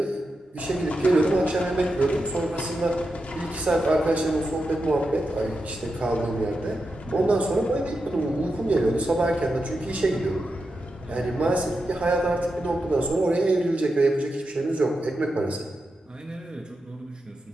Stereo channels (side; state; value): both; normal; correlation 0.88